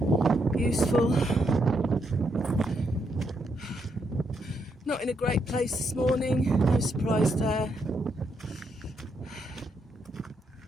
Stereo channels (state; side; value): normal; both; correlation 0.78